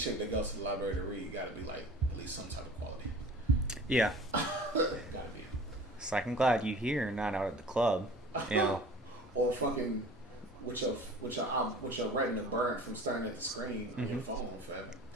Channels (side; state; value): both; normal; correlation 0.43